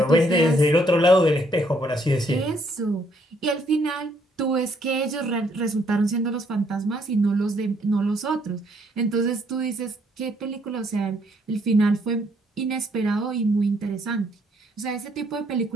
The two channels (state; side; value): normal; both; correlation 0.69